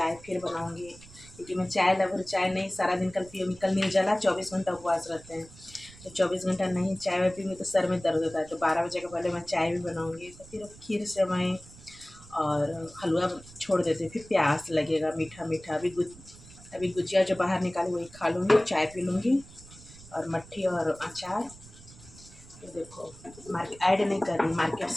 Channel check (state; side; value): noise; right; rumble, 20 dB below the sound